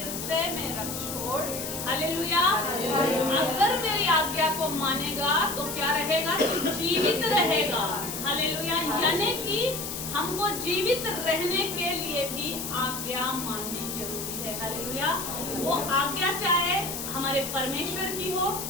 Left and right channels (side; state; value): left; noise; hiss, 6 dB below the sound